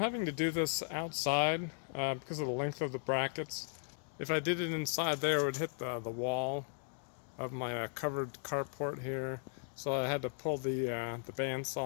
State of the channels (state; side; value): silent; right; 53 dB below the other